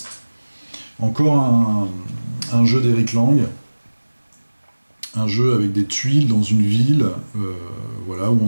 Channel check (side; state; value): both; inverted; correlation -1.00